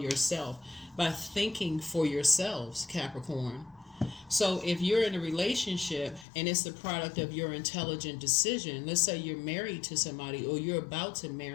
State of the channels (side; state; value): right; drops out; at 6.2 s